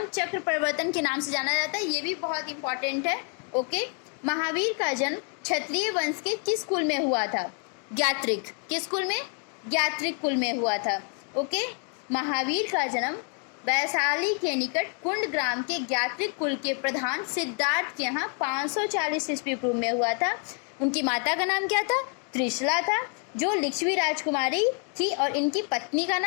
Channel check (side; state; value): right; quieter; 39.1 dB